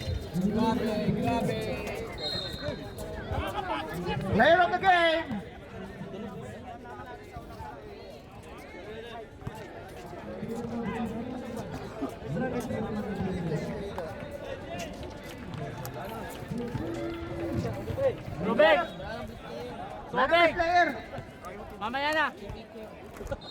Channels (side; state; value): both; identical; correlation 1.00